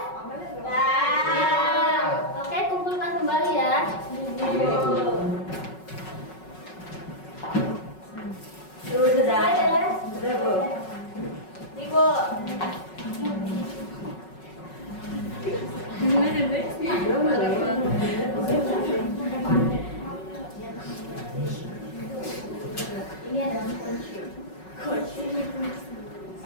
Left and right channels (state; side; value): late; right; 5.4 ms